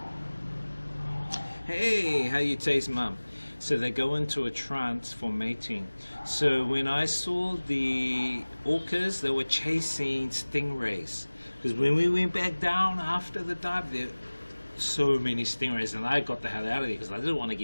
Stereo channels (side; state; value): both; inverted; correlation -1.00